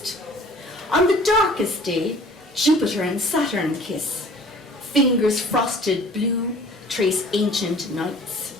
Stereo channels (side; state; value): both; normal; correlation 0.49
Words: On the darkest day, Jupiter and Saturn kiss, fingers frosted blue trace ancient nights.